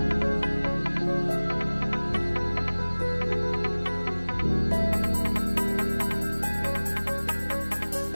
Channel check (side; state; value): both; inverted; correlation -1.00